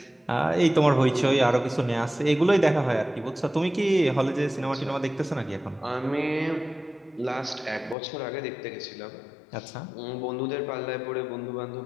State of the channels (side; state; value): right; drops out; at 8.0 s